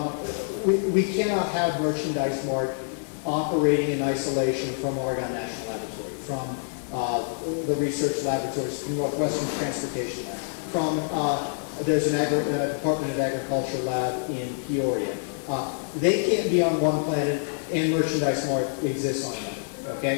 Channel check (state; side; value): silent; right; digital silence